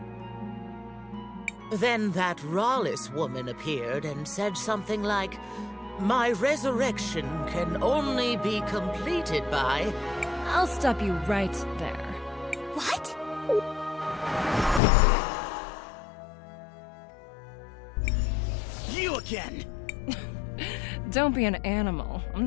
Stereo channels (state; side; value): drops out; right; at 14.8 s